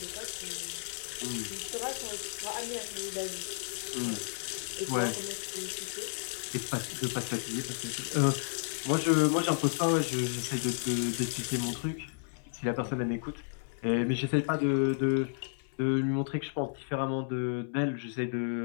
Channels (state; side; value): silent; right; 56 dB below the other